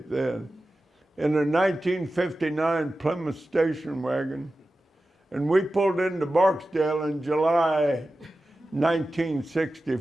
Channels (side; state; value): both; normal; correlation 0.94